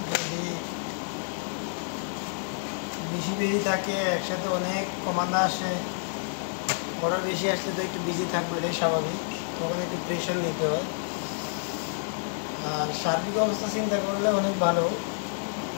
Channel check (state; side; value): silent; right; digital silence